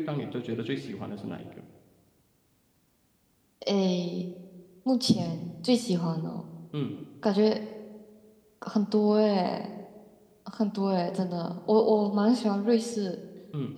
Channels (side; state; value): both; identical; correlation 1.00